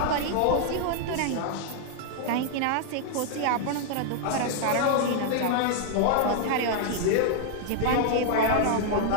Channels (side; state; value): both; different; correlation 0.00